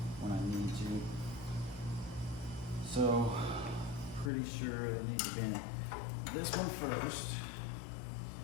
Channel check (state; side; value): drops out; right; at 4.3 s